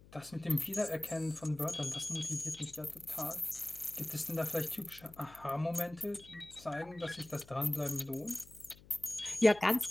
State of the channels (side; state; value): left; noise; hum, 22 dB below the sound